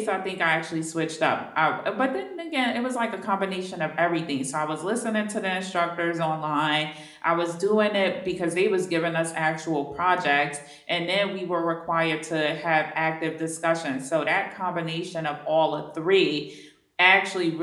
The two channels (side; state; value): both; identical; correlation 1.00